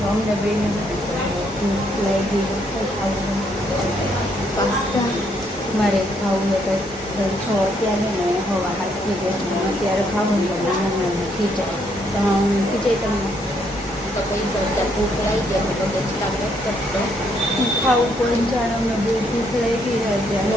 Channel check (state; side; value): normal; both; correlation 0.72